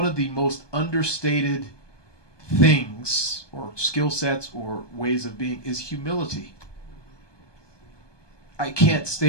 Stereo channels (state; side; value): late; right; 1.2 ms